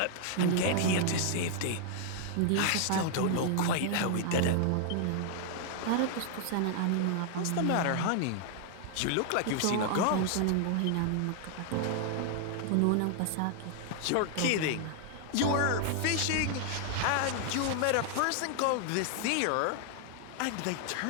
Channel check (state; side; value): different; both; correlation 0.00